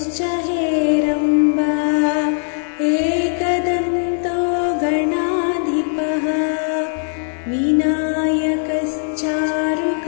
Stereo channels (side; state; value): right; silent; digital silence